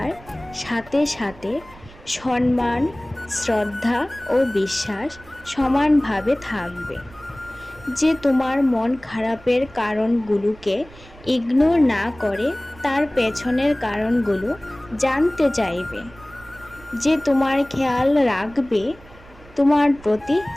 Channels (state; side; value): noise; right; rumble, 22 dB below the sound